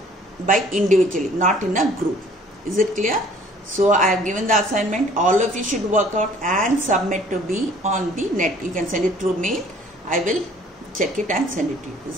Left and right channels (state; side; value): normal; both; correlation 0.54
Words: by individually, not in a group. Is it clear? So I have given the assignment. All of you should work out and submit to me on the net. You can send it through mail. I will check it and send it to you.